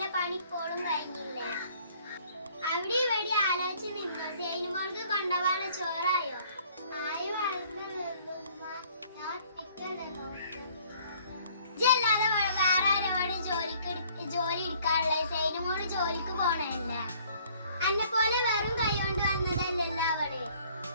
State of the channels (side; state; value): both; inverted; correlation -0.58